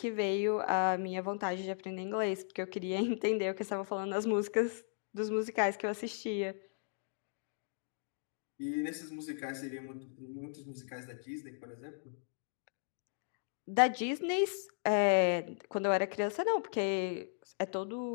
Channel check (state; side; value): silent; right; digital silence